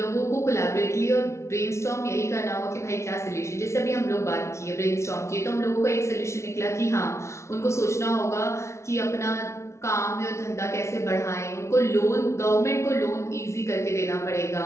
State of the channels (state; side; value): late; right; 0.13 ms